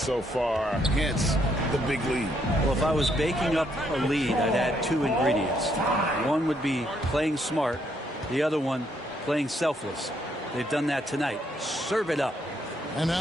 far, hence the big lead. Well, if I was baking up a lead, I'd add 2 ingredients. One would be playing smart. The other one, playing selfless. They've done that tonight. Serve it up. And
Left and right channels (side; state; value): both; normal; correlation 0.73